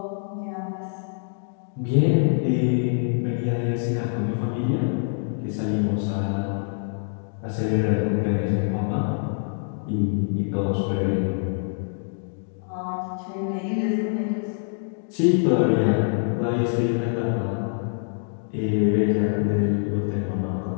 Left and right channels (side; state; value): right; silent; 62 dB below the other